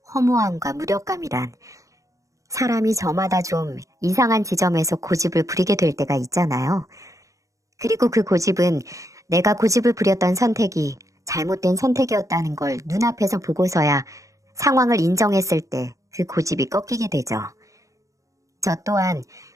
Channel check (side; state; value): left; late; 0.16 ms